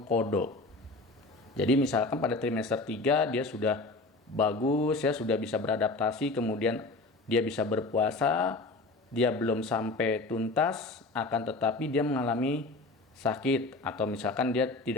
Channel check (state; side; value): quieter; right; 3.2 dB